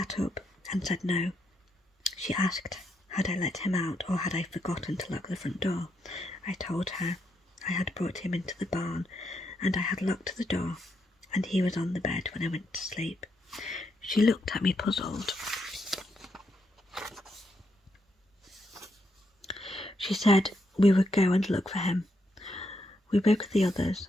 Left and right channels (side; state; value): both; normal; correlation 0.79